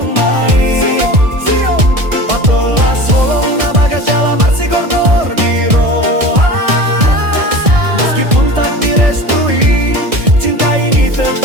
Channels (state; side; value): late; left; 1.6 ms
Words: main. Sio, patolas holong na bagas jalan marsi gorgor di roha. Meskipun tak direstui, cinta ini